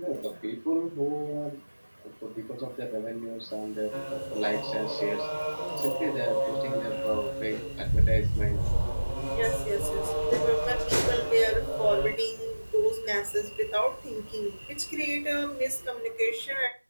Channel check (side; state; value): both; inverted; correlation -1.00